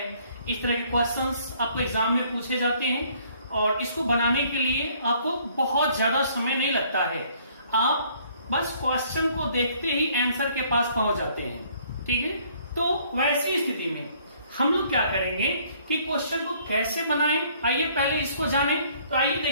इस तरह के क्वेश्चंस आपको एग्जाम में पूछे जाते हैं और इसको बनाने के लिए आपको बहुत ज्यादा समय नहीं लगता है। आप बस क्वेश्चन को देखते ही आंसर के पास पहुंच जाते हैं, ठीक है। तो वैसी स्थिति में हम लोग क्या करेंगे कि क्वेश्चन को कैसे बनाएं, आइए पहले इसको जानें। तो आइए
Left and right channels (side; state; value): both; inverted; correlation -0.61